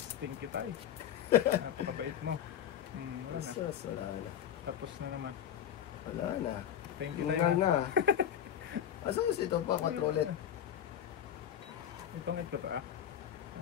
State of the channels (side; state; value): right; quieter; 9.7 dB